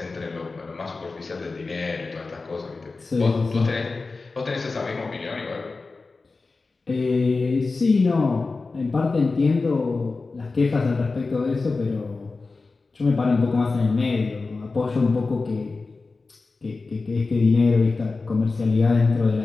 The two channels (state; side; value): quieter; right; 3.9 dB